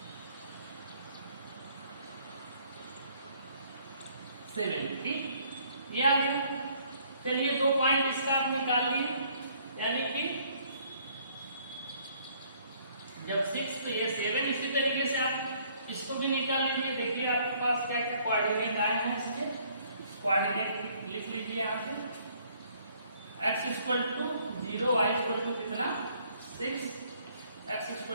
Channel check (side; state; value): both; inverted; correlation -0.63